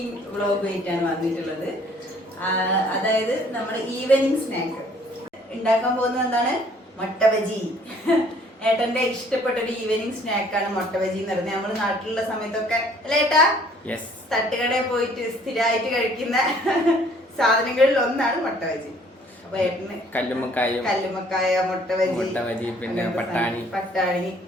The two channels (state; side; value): normal; both; correlation 0.58